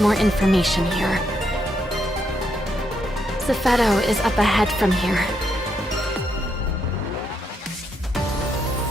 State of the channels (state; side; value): normal; both; correlation 0.78